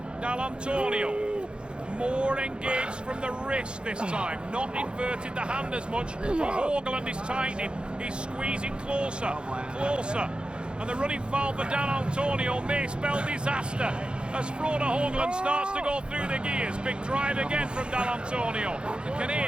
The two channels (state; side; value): late; left; 0.053 ms